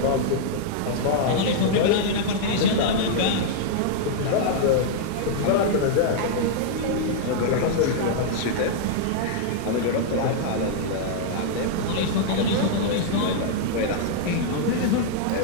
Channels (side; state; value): both; different; correlation -0.01